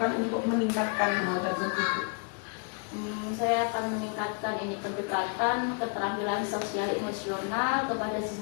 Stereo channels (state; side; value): quieter; right; 38.9 dB